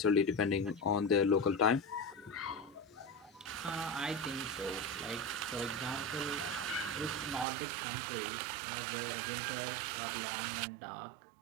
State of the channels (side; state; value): left; drops out; at 7.5 s